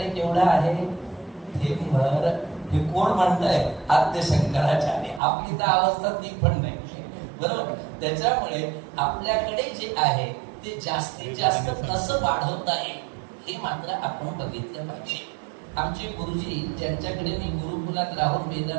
केवढं आहे हे भर. हे कोण म्हणताय आद्य शंकराचार्य. आपली तर अवस्था ती पण नाही बरोबर. त्याच्यामुळे आपल्याकडे जे आहे ते जास्तीत जास्त कसं वाढवता येईल हे मात्र आपण बघितलं पाहिजे. आमचे गुरुजी ज्यांच्याकडे मी गुरुकुलात राहून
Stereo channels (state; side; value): drops out; left; at 5.2 s